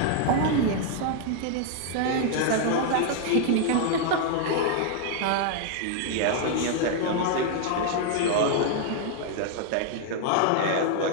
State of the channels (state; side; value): different; both; correlation 0.00